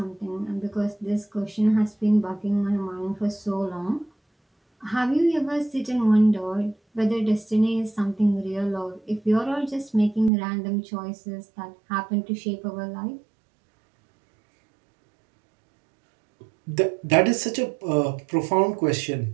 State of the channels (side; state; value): left; drops out; at 10.3 s